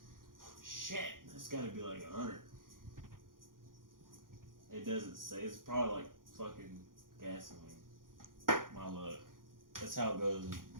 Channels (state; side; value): late; left; 0.90 ms